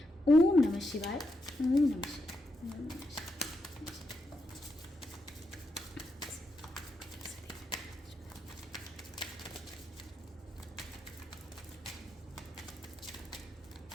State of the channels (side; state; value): both; normal; correlation 0.83